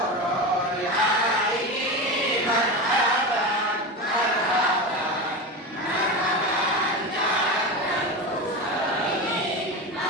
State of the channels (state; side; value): normal; both; correlation 0.22